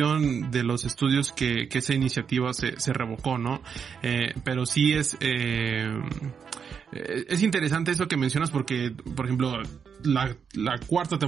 de los estudios que esa iniciativa se revocó, ¿no? Pero sí es interesante eso que mencionas porque, por ejemplo, la cuarta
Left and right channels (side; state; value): left; quieter; 6.7 dB